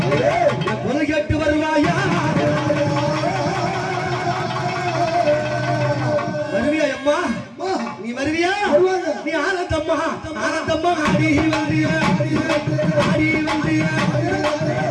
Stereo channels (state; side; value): identical; both; correlation 1.00